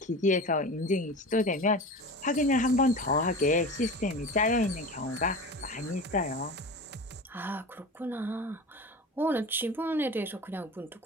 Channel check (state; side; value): normal; both; correlation 0.31